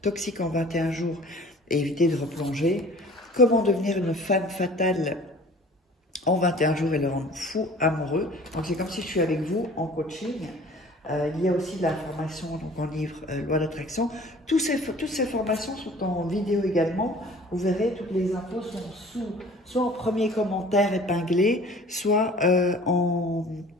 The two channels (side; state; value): both; normal; correlation 0.47